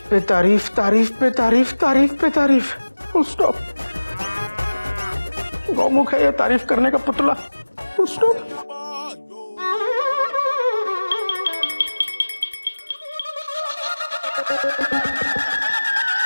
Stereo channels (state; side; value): inverted; both; correlation -1.00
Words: पे तारीफ, तारीफ पे तारीफ, तारीफ पे तारीफ। Full stop. गौमुख है ये तारीफ करने का पुतला। Full stop.